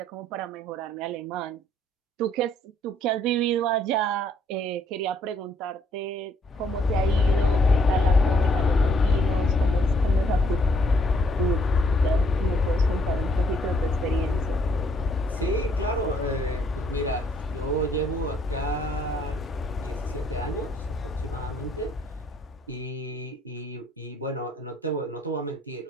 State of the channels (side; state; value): both; normal; correlation 0.67